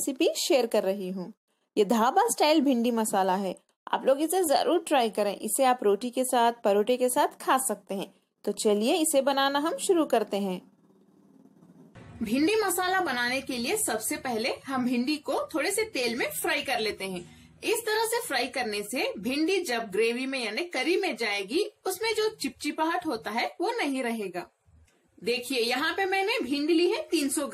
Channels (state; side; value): identical; both; correlation 1.00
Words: शेयर कर रही हूँ। ये ढाबा स्टाइल भिंडी मसाला है। आप लोग इसे जरूर ट्राई करें। इसे आप रोटी के साथ, परोठे के साथ खा सकते हैं। तो चलिए इसे बनाना हम शुरू करते हैं। भिंडी मसाला बनाने के लिए सबसे पहले हम भिंडी को थोड़े से तेल में फ्राई कर लेते हैं। इस तरह से फ्राई करने से भिंडी जब ग्रेवी में यानी करी में जाएगी, उसमें जो चिपचिपाहट होता है वो नहीं रहेगा। देखिए यहाँ पे मैंने भिंडी ली है 300